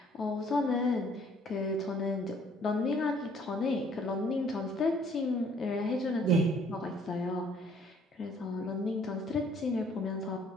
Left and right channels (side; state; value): both; normal; correlation 0.60